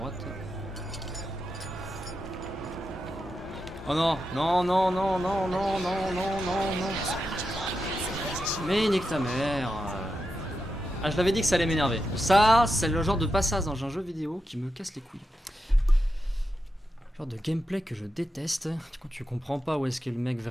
Oh non. Mais nique ta mère. Ah, je l'avais dit que ça allait m'énerver. Ça, c'est le genre de passage dans un jeu vidéo qui me casse les couilles. Genre de gameplay que je déteste. Quand tu comprends pas où est-ce qu'est le mec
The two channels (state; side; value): normal; both; correlation 0.88